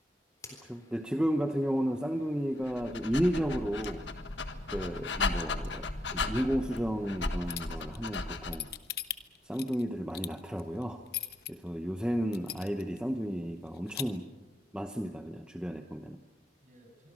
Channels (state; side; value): normal; both; correlation 0.82